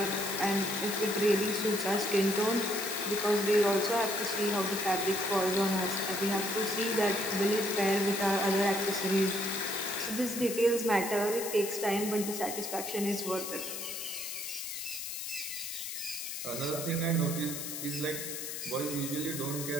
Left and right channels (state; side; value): noise; left; hiss, 6 dB below the sound